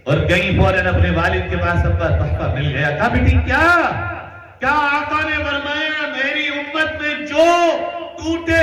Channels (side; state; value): both; identical; correlation 1.00